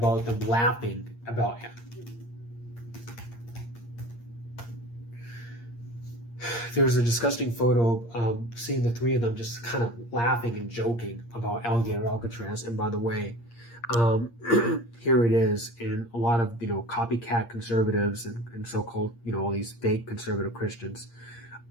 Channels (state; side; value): late; right; 8.6 ms